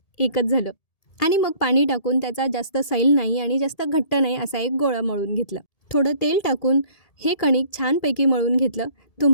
एकच झालं. आणि मग पाणी टाकून त्याचा जास्त सैल नाही आणि जास्त घट्ट नाही असा एक गोळा मळून घेतला. थोडं तेल टाकून हे कणिक छानपैकी मळून घेतलं.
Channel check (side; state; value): right; late; 1.7 ms